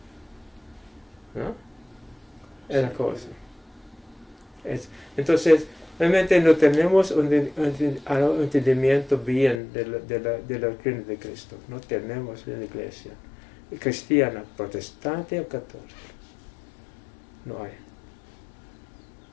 ¿No? Es la cosa. Entonces, realmente no tenemos un entendimiento bien de la doctrina de Cristo. No tenemos en la iglesia cristiana, protestante o católica. No hay.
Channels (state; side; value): drops out; right; at 9.6 s